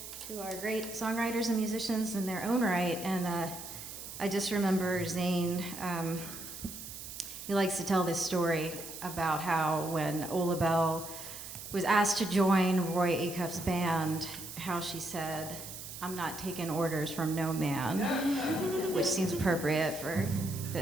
who are great songwriters and musicians in their own right. And I just remember Zane, he likes to tell this story about how when Ola Bell was asked to join Roy Acuff's band, how she said, "I'm not taking orders from no man," which seems appropriate for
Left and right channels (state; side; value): noise; right; hiss, 11 dB below the sound